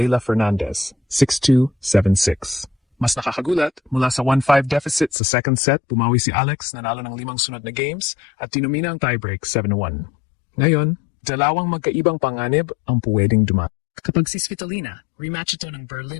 Fernandez, 6-2, 7-6. Mas nakakagulat, mula sa 1-5 deficit sa second set, bumawi si Alex, nanalo ng 5 sunod na games at tinumina ang tiebreak 7-1. Ngayon, dalawang magkaibang panganib ang pwedeng dumating. Kapag si Svitolina, rematch ito ng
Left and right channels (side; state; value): right; drops out; at 5.1 s